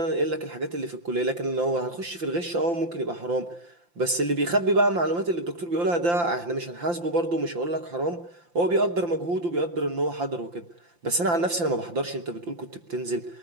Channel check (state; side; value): late; left; 5.8 ms